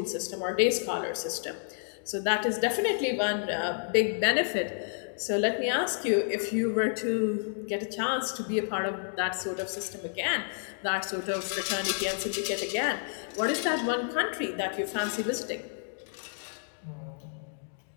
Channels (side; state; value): right; silent; digital silence